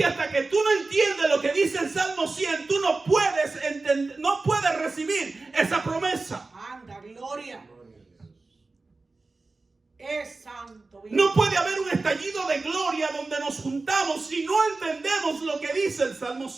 hasta que tú no entiendes lo que dice el Salmo 100, tú no puedes entender, no puedes recibir esa promesa. Anda, gloria. Es santo. Vive. No puede haber un estallido de gloria donde nos juntamos si no entendemos lo que dice el Salmo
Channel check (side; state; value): left; quieter; 3.6 dB